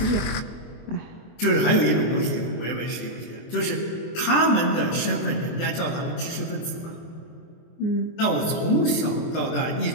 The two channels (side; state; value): right; late; 24 ms